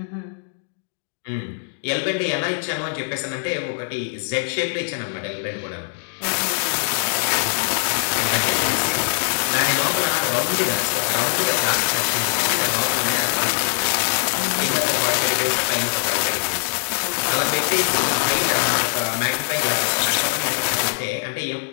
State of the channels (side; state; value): right; silent; digital silence